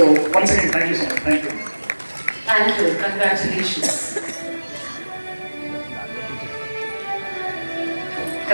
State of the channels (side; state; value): both; inverted; correlation -1.00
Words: once again thank you so much. Thank you. Thank you. Congratulations.